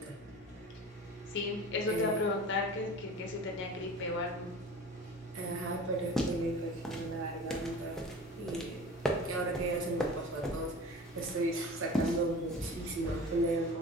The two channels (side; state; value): both; normal; correlation 0.38